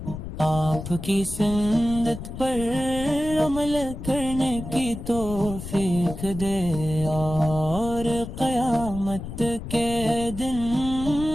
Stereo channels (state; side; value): noise; left; rumble, 9 dB below the sound